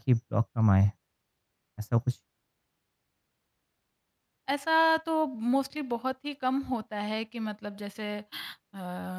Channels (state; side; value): identical; both; correlation 1.00